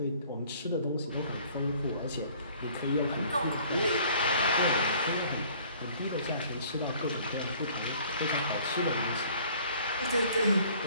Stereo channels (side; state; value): both; inverted; correlation -0.54